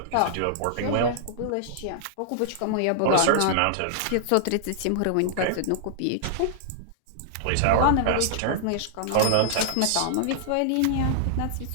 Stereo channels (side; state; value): both; different; correlation -0.01